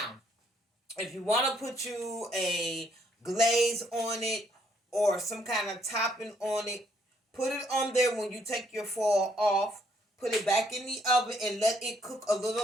if you want to put you a glaze on it or some kind of topping on it, put it on there when you take your foil off. Put it back in the oven and let it cook a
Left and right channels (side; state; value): both; normal; correlation 0.70